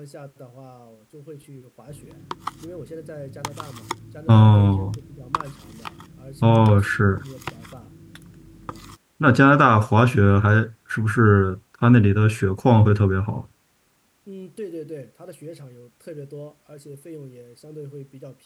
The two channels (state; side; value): identical; both; correlation 1.00